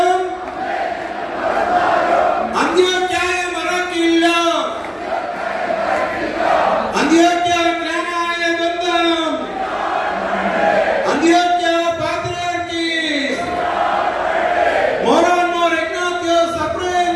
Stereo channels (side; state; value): both; identical; correlation 1.00